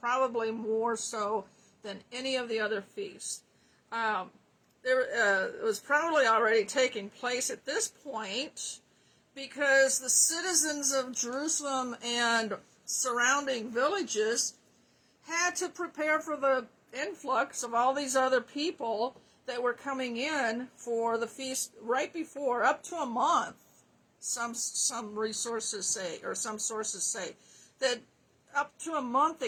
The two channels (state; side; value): identical; both; correlation 1.00